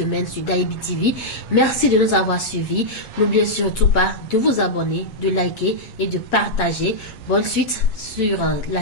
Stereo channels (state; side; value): late; right; 7.3 ms